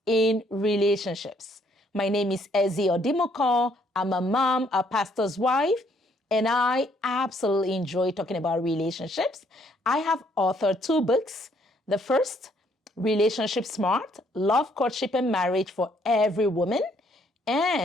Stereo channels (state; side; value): normal; both; correlation 0.67